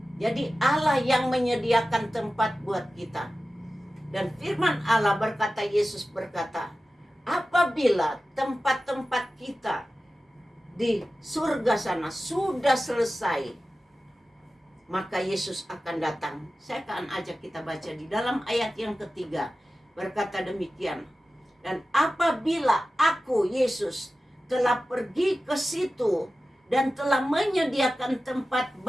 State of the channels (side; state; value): both; normal; correlation 0.95